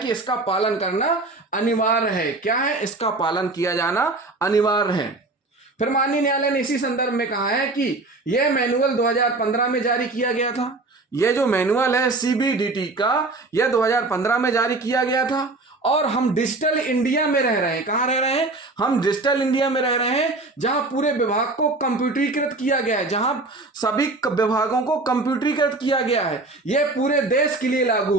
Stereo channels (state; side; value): quieter; left; 3.2 dB